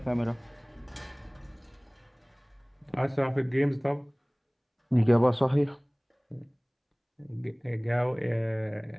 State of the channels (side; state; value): both; identical; correlation 1.00